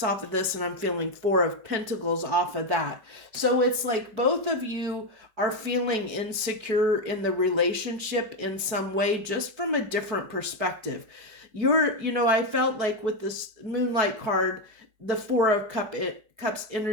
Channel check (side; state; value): left; late; 4.6 ms